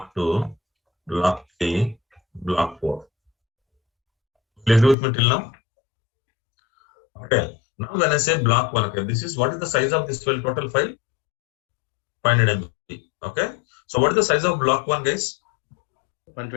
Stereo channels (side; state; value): right; drops out; at 5.0 s